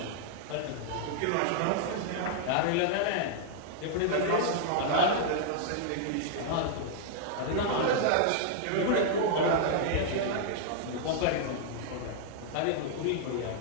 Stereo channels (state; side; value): different; both; correlation -0.01